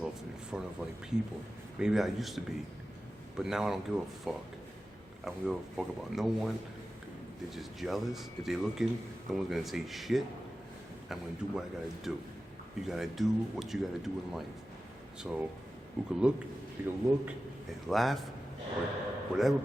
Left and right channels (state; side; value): normal; both; correlation 0.94